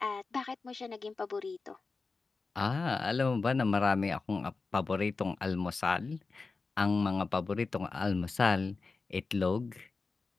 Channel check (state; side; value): quieter; right; 4.1 dB